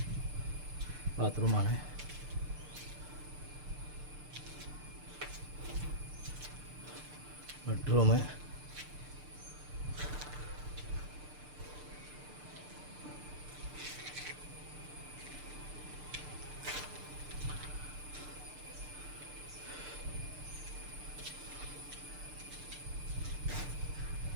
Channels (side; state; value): left; late; 6.7 ms